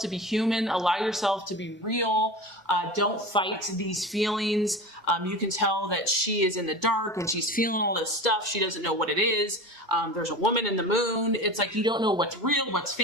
be human. Allow yourself to be real. Don't fight these feelings. You can tell that she is in the dark and she's feeling all this stuff. She doesn't know what it is. There's a woman in the moon. It's like you don't know what's real, what's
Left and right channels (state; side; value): normal; both; correlation 0.31